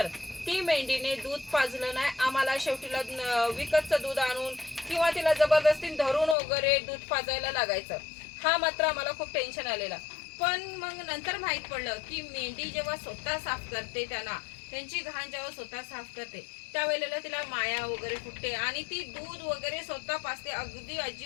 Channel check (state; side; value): drops out; right; at 6.4 s